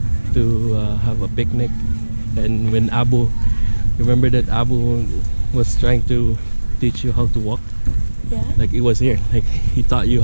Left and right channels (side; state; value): both; inverted; correlation -1.00